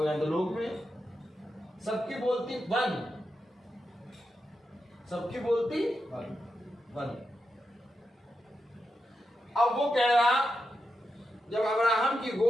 अंधलोक में। सबकी बोलती वन, सबकी बोलती वन। अब वो कह रहा, जब अब्राहम की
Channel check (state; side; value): normal; both; correlation 0.87